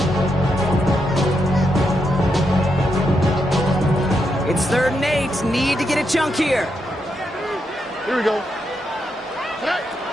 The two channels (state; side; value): normal; both; correlation 0.82